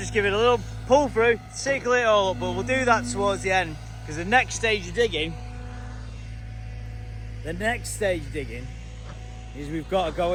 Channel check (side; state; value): both; identical; correlation 1.00